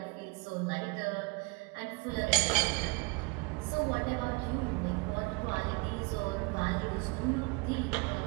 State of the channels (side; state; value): left; quieter; 28.6 dB